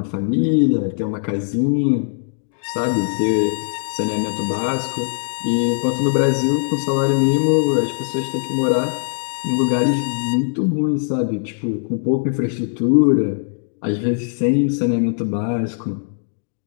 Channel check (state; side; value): silent; right; digital silence